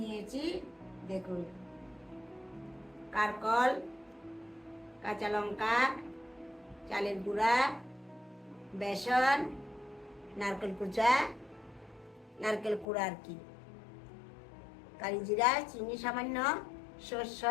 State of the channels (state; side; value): drops out; right; at 12.9 s